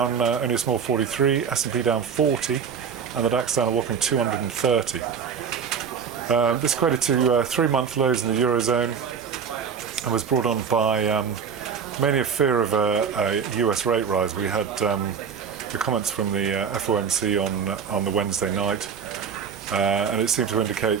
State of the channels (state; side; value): quieter; left; 6.6 dB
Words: only a small 43, S&P down 40 and the DAX down a whopping 230. This equated to 3-month lows in the Eurozone and was brought on by mainly a fear of a US rate rise. We had the comments from the FOMC on the Wednesday night, and it seemed to